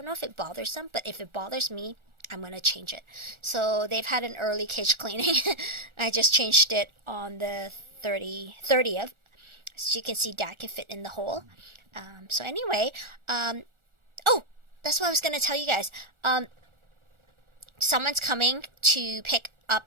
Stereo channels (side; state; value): left; late; 1.4 ms